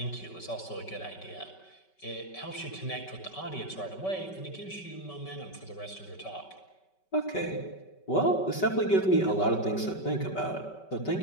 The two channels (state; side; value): late; right; 5.2 ms